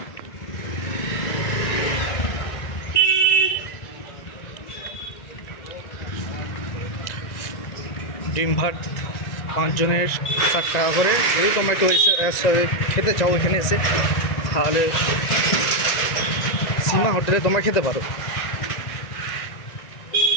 ডিম ভাত 5 জনের 60 টাকা করে। যদি তোমরা একটু খেতে চাও এখানে এসে, তাহলে সীমা হোটেলে তোমরা খেতে পারো।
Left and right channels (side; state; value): right; late; 1.9 ms